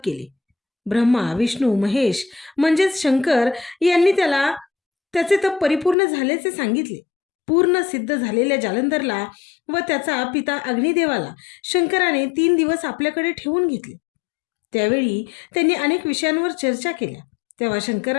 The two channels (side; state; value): right; drops out; at 6.0 s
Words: केले. ब्रह्मा, विष्णू, महेश म्हणजेच शंकर यांनी त्याला त्याचे तप परिपूर्ण झाल्याचे सांगितले. पूर्ण सिद्ध झालेल्या जालंधरला व त्याचा पिता अग्निदेवाला शंकराने 3 दिवस आपल्याकडे ठेवून घेतले. त्यावेळी त्यांनी अनेक विषयांवर चर्चा केल्या. तेव्हा